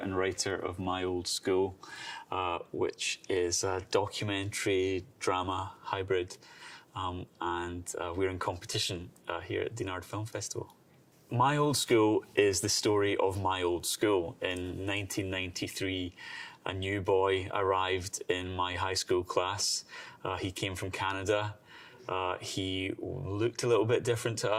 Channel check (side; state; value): both; identical; correlation 1.00